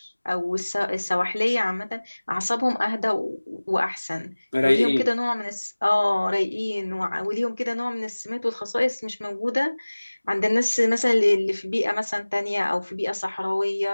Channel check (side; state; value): both; inverted; correlation -1.00